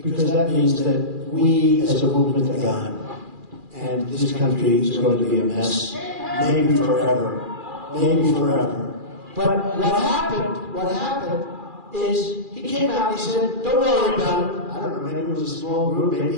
that means that we as a movement are gone. And this country is going to be a mess, maybe forever. Maybe forever. But what happened is he came out and he said, don't worry about it. I don't know, maybe it was a small group, maybe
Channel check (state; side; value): late; left; 2.4 ms